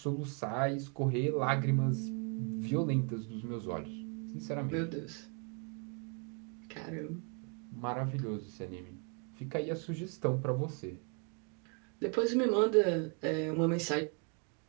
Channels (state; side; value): quieter; left; 38.3 dB